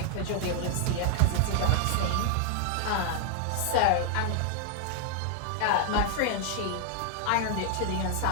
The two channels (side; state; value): both; different; correlation 0.00